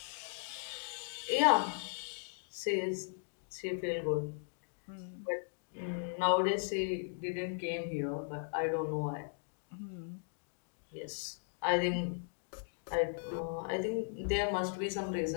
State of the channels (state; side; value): silent; right; digital silence